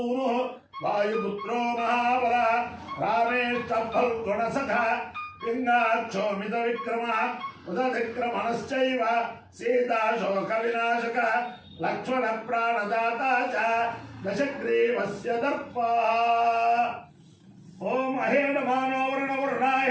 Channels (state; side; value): identical; both; correlation 1.00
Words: वायुपुत्रो महाबलः रामेष्टफल्गुणसखः पिङ्गाक्षोमितविक्रमः उदधिक्रमणश्चैव सीताशोकविनाशकः लक्ष्मणप्राणदाता च दशग्रीवस्य दर्पः ओम अहेडमानो